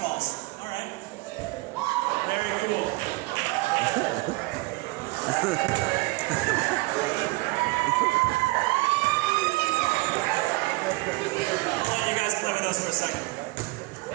All right. Very cool. I'll let you guys play with us for a second.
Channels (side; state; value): left; quieter; 23.7 dB